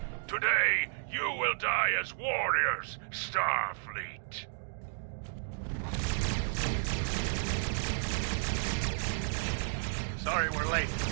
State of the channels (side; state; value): left; silent; digital silence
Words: Today, you will die as warriors, Starfleet. Sorry we're late.